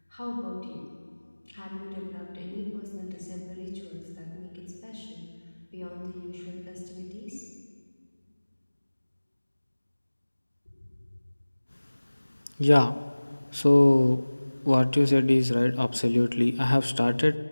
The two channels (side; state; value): both; inverted; correlation -1.00